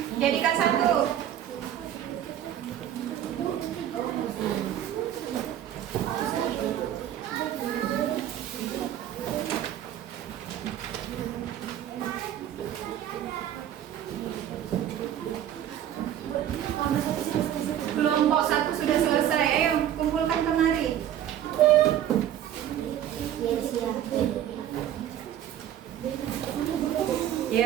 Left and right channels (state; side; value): quieter; left; 11.0 dB